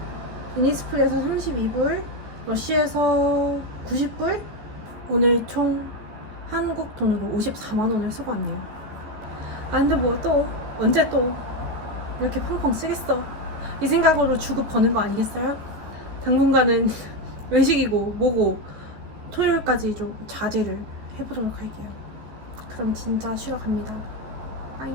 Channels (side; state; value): left; late; 14 ms